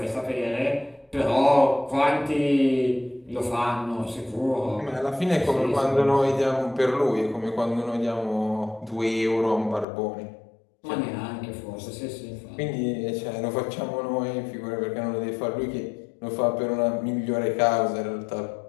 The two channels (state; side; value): drops out; right; at 9.9 s